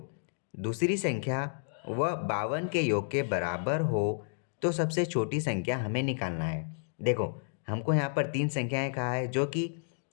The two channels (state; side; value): silent; right; digital silence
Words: दूसरी संख्या व 52 के योग के बराबर हो तो सबसे छोटी संख्या हमें निकालना है। देखो, हमको यहाँ पर तीन संख्याएं कहा है जो कि